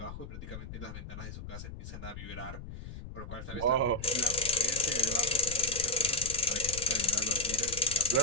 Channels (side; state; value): left; noise; rumble, 11 dB below the sound